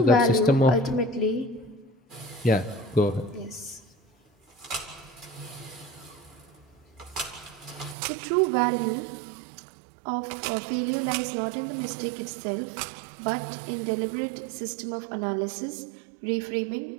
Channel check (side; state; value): left; drops out; at 8.0 s